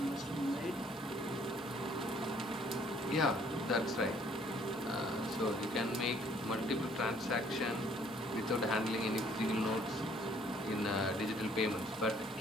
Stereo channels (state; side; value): normal; both; correlation 0.62